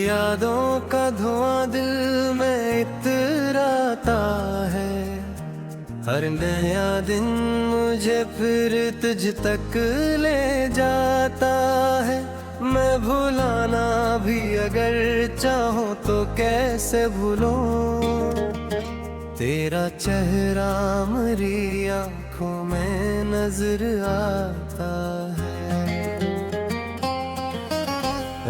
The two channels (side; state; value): both; identical; correlation 1.00